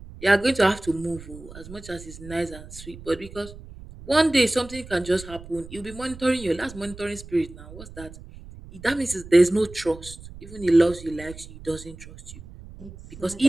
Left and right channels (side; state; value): right; noise; rumble, 16 dB below the sound